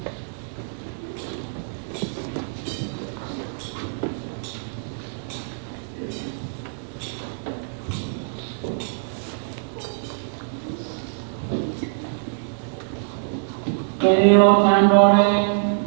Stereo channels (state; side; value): silent; left; 62 dB below the other